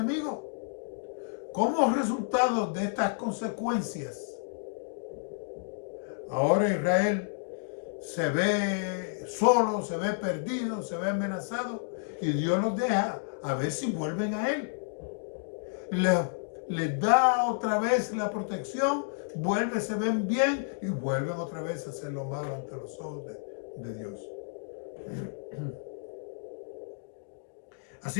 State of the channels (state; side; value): silent; right; digital silence